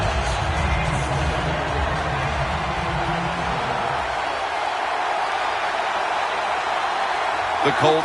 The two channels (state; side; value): identical; both; correlation 1.00